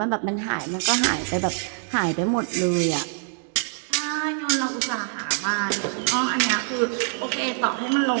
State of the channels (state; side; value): silent; left; 62 dB below the other